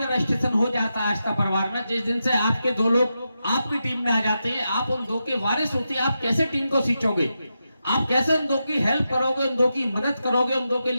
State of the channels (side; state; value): both; inverted; correlation -0.88